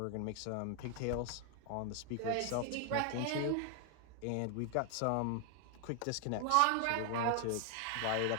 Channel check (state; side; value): different; both; correlation 0.00